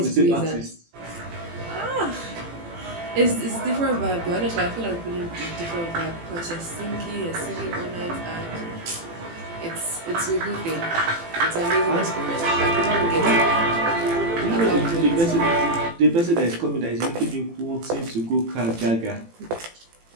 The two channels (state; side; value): late; left; 18 ms